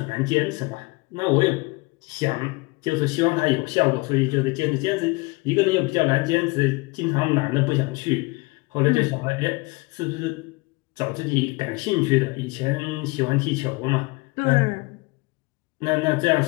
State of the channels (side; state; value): right; quieter; 25.4 dB